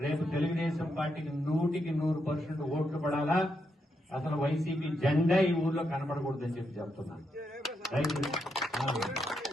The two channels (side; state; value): both; normal; correlation 0.81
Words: రేపు తెలుగుదేశం పార్టీకి 100% ఓట్లు పడాలా. అసలు వైసీపీ జెండా ఈ ఊర్లో కనపడకూడదని చెప్పి చెప్తున్నాను.